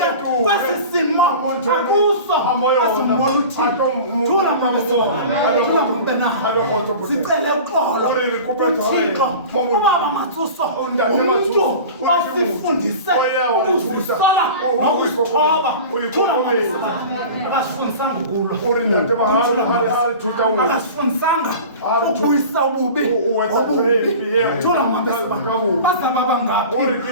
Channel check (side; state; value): both; inverted; correlation -0.37